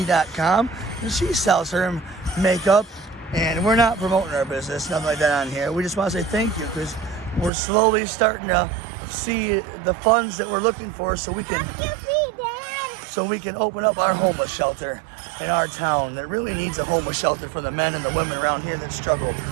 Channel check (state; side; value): drops out; left; at 7.5 s